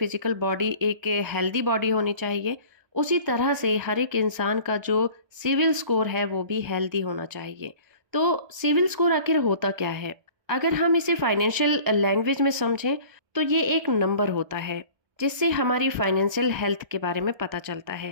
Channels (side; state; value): left; late; 1.3 ms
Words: बॉडी एक हेल्दी बॉडी होनी चाहिए, उसी तरह से हर एक इंसान का जो सिविल स्कोर है वो भी हेल्दी होना चाहिए। तो सिविल स्कोर आखिर होता क्या है? अगर हम इसे फाइनेंशियल लैंग्वेज में समझें तो ये एक नंबर होता है जिससे हमारी फाइनेंशियल हेल्थ के बारे में पता चलता